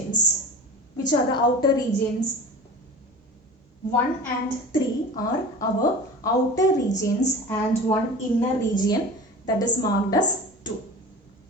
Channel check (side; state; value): both; normal; correlation 0.36